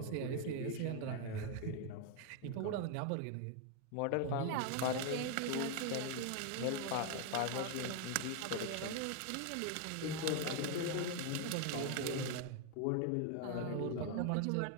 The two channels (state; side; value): different; both; correlation 0.01